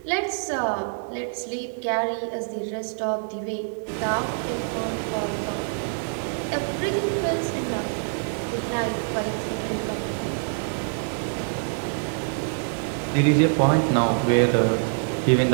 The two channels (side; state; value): left; silent; digital silence